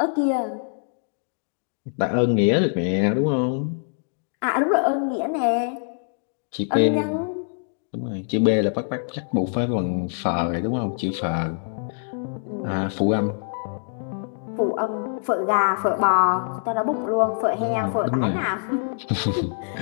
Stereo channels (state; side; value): silent; right; digital silence